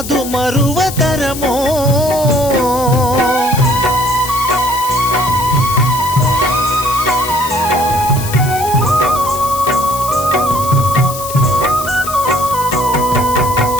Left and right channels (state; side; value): noise; left; hiss, 10 dB below the sound